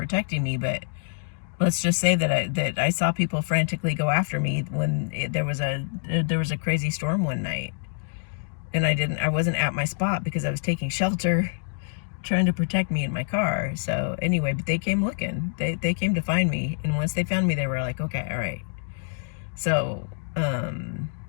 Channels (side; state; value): right; silent; digital silence